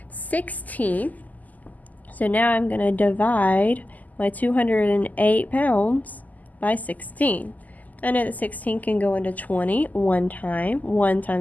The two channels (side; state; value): right; late; 0.080 ms